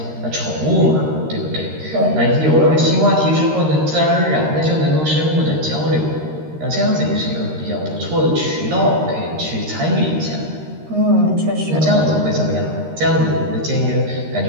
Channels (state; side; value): late; left; 13 ms